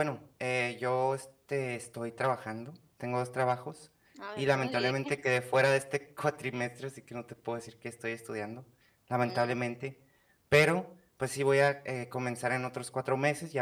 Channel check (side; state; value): both; identical; correlation 1.00